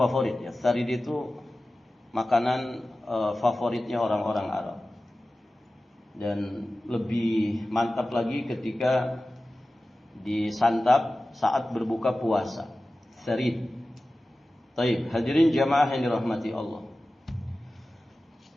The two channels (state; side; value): normal; both; correlation 0.96